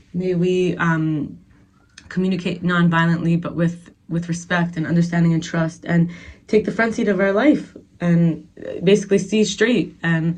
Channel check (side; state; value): both; identical; correlation 1.00